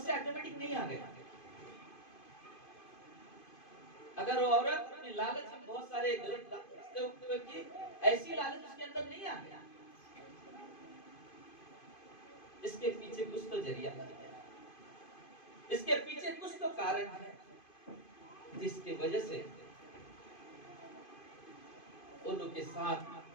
ऑटोमेटिक नहीं आ गया। अगर वो औरत अपनी लालच में बहुत सारे गलत रास्ते उठते की, ऐसी लालच उसके अंदर नहीं आ गया, इसके पीछे कुछ तो जरिया है, इसके पीछे कुछ तो कारण है, जिसकी वजह से उन के साथ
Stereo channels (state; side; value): late; right; 2.5 ms